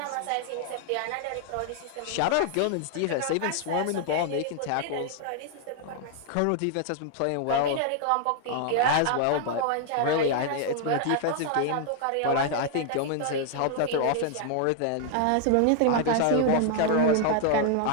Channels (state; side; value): different; both; correlation 0.00